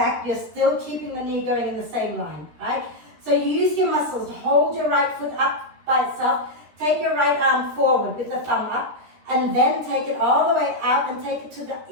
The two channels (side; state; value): left; late; 13 ms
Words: you're still keeping the knee going in the same line, right? So you use your muscles, hold your right foot up by itself, take your right arm forward with the thumb up, and then take it all the way out and take it to the